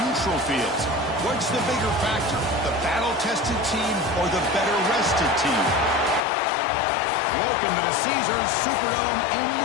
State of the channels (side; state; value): right; drops out; at 6.2 s